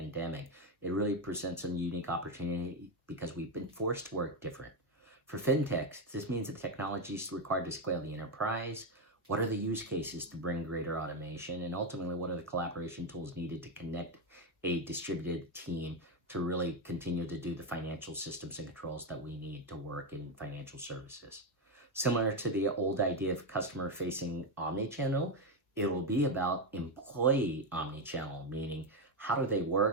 it really presents a unique opportunity because we've been forced to work different. For fintechs, this means that technology is required to scale the enterprise. What are the use cases to bring greater automation? And ultimately, what are the collaboration tools needed to connect a distributed team to really continue to do the financial systems and controls that we need to work in financial services? Similar to the old idea of customer-facing omnichannel, it will be about employee omnichannel, meaning how do they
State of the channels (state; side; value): normal; both; correlation 0.08